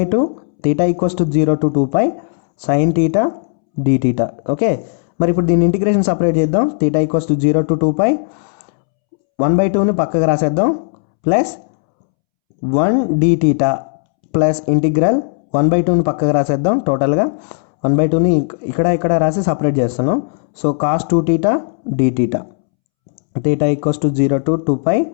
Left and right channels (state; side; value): silent; right; 69 dB below the other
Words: theta = 0 to 2π sine theta d theta. Okay, మరి ఇప్పుడు దీన్ని ఇంటిగ్రేషన్ సపరేట్ చేద్దాం. థీటా = 0 to 2π 1/2ని పక్కకు రాసేద్దాం plus 1 d theta plus integral 1/2ని పక్కకు రాసేద్దాం. టోటల్గా 1/2ని ఇక్కడ రాసి సపరేట్ చేస్తున్నాం. So cos 2θ d theta. Theta = 0 to 2π